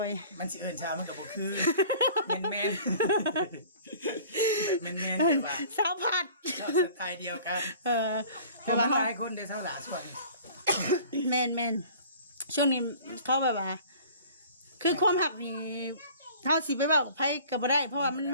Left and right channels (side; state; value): both; inverted; correlation -0.47